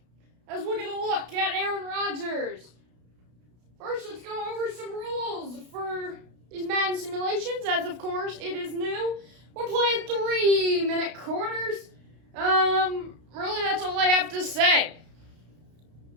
as we're going to look at Aaron Rodgers. First, let's go over some rules for these Madden simulations, as of course it is new. We're playing 3-minute quarters. Really, that's all I have to say.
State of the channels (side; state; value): left; late; 33 ms